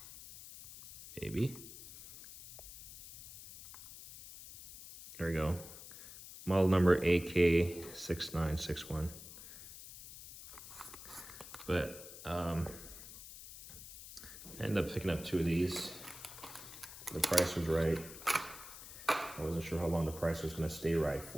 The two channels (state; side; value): noise; left; hiss, 14 dB below the sound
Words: Maybe. There we go. Model number AK6961. But I ended up picking up 2 of these. The price was right. I wasn't sure how long the price was gonna stay right